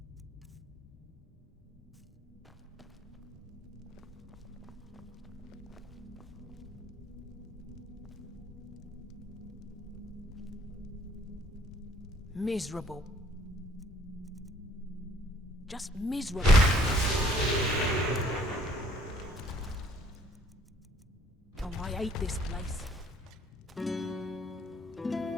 Miserable. Just miserable. Oh, I hate this place.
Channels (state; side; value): normal; both; correlation 0.59